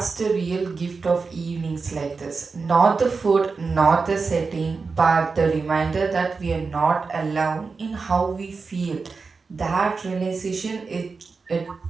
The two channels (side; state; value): left; quieter; 4.6 dB